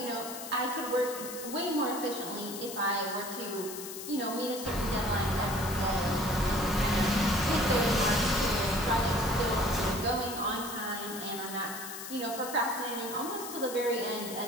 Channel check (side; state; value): left; noise; hiss, 10 dB below the sound